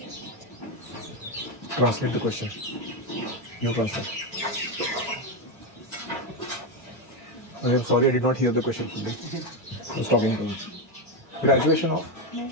Translate the question. You translate. I am sorry, I did not hear the question fully. I was talking to you. Graduation of?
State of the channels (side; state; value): both; normal; correlation 0.10